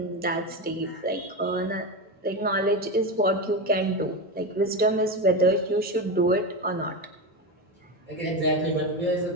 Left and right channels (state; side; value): normal; both; correlation 0.17